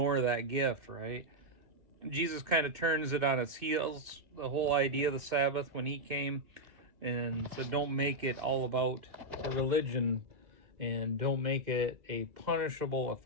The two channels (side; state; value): left; late; 2.1 ms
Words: that gift, right? Jesus kind of turns it on its heels, the whole idea of the Sabbath, when he came and said, don't make it all about a religion and don't make it a punishable